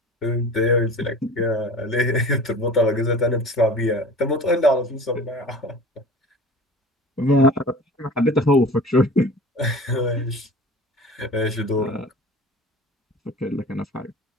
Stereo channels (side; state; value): both; normal; correlation 0.40